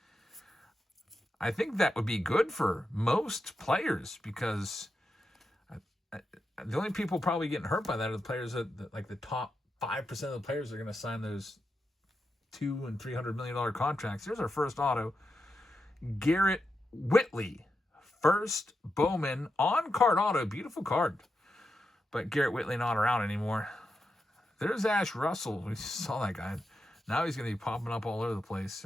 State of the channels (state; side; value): normal; both; correlation 0.87